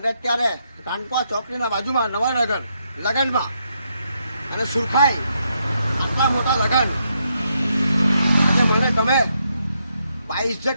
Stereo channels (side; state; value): both; inverted; correlation -0.78